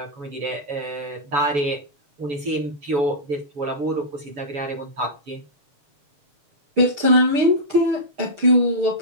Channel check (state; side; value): late; left; 7.0 ms